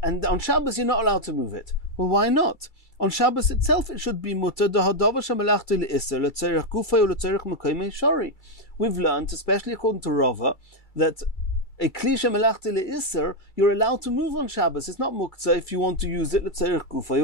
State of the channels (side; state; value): right; late; 2.3 ms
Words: and on Shabbos you're not allowed to move it. Well, why not? On Shabbos itself it should be mutter dahadavar shemelachti le'isur letzerich gufay or letzerich mekaymei shori. We've learned, especially according to Rava, that a kli shemelachti le'isur you're allowed to move on Shabbos. It's not muktzah if you want to use it letzerich gufay